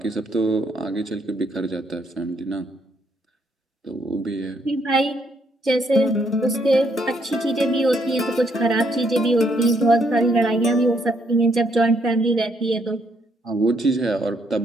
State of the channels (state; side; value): normal; both; correlation 0.72